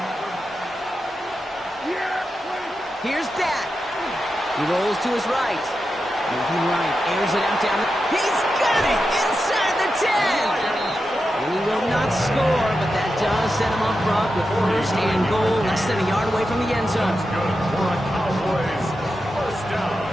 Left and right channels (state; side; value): normal; both; correlation 0.89